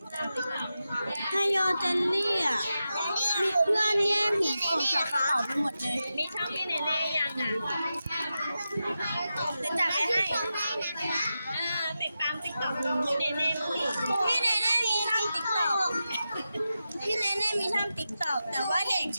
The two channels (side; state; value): both; inverted; correlation -0.91